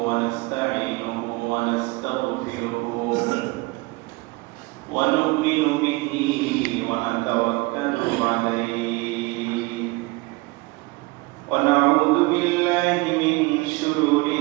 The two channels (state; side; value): quieter; left; 23.7 dB